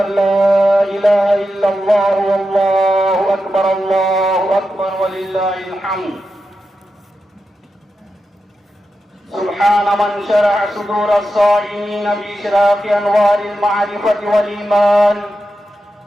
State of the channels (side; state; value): both; normal; correlation 0.89